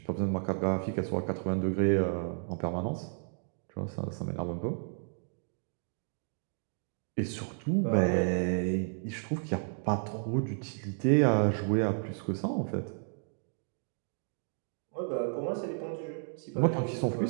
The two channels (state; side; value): silent; left; 56 dB below the other